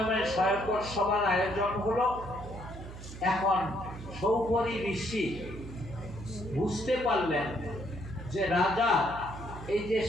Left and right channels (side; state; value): right; noise; hum, 12 dB below the sound